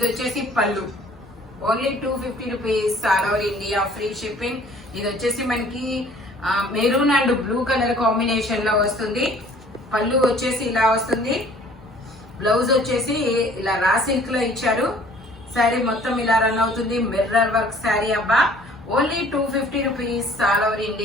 వచ్చేసి పళ్ళు. Only 250 rupees. All over India free shipping. ఇది వచ్చేసి మనకి maroon and blue colour combination లో వస్తుంది. పళ్ళు వచ్చేసి ఇలా వస్తుంది. బ్లౌజ్ వచ్చేసి ఇలా రా సిల్క్ లో ఇచ్చారు. శారీ మొత్తం ఇలా రన్ అవుతుంది. మిర్రర్ వర్క్ శారీ అబ్బా. Only 250 rupees. All over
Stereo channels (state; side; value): normal; both; correlation 0.54